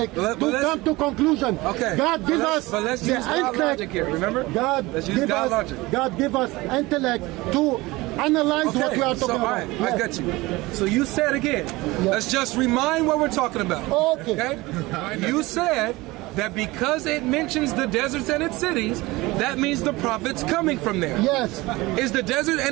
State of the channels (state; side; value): quieter; left; 21.1 dB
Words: to come to conclusion. God give us the intellect here. Remember, God give us intellect to analyze what we are talking about. I got you. So you said again. Let's just remind what we're talking about. Okay. You said that because it mentions the deserts and its cities, that means the prophet's coming from there. Yes. Is the desert